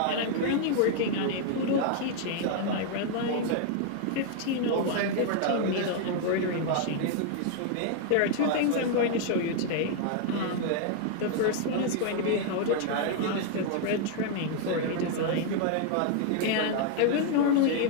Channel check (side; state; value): both; different; correlation 0.00